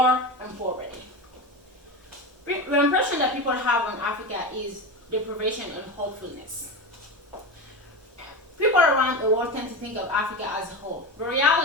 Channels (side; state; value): both; normal; correlation 0.23